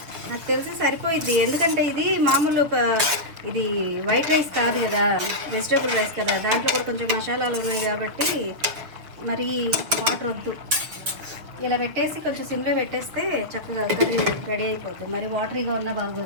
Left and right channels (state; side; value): late; left; 6.9 ms